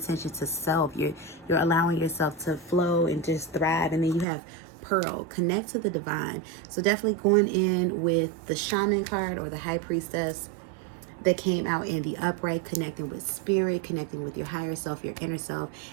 to self. You're allowing yourself to flow and just thrive. And then you have Pearl. Connect to the divine. So definitely going in with the Shaman card or the High Priestess that came out in the upright, connecting with spirit, connecting with your higher self, your inner self,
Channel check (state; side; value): drops out; left; at 4.2 s